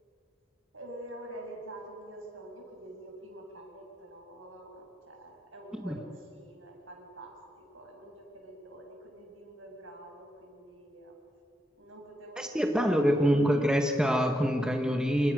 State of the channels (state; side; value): normal; both; correlation 0.83